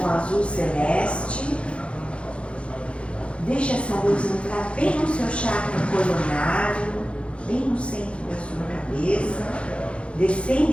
com azul celeste. Deixa essa luz entrar bem no seu chakra coronário, bem no centro da sua cabeça, descendo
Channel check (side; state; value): right; late; 0.060 ms